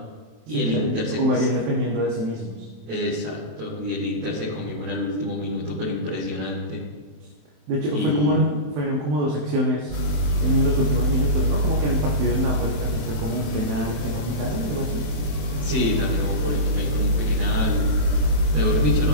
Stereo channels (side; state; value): left; late; 27 ms